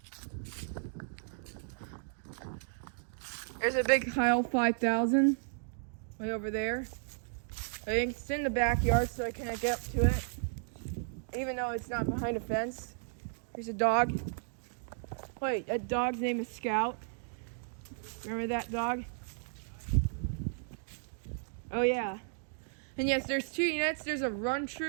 There's a big Heil 5000 way over there. I think it's in the backyard, so I can't get up to it, even though it's not behind a fence. There's a dog. Wait, that dog's name is Scout. Remember that dog? Oh yeah. And yes, there's 2 units. There's a Run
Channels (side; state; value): left; silent; digital silence